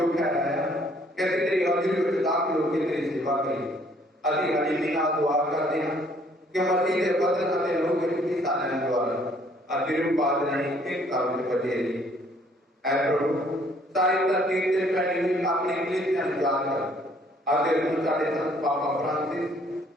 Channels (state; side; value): normal; both; correlation 0.62